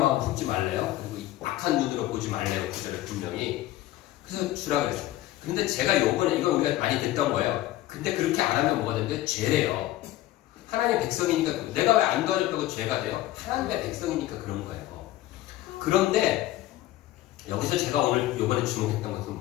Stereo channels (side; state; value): right; quieter; 15.5 dB